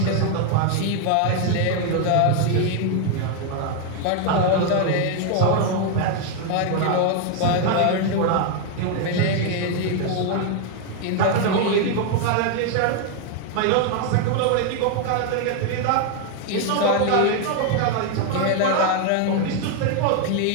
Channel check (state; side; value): different; both; correlation 0.01